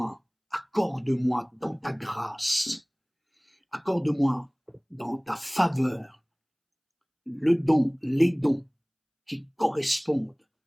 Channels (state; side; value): identical; both; correlation 1.00